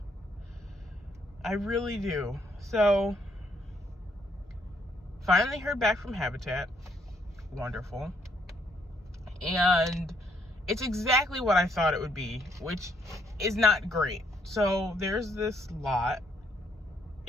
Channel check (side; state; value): both; normal; correlation 0.71